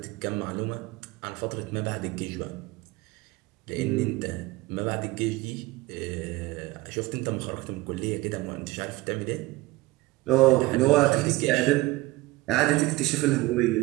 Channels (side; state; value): left; quieter; 20.0 dB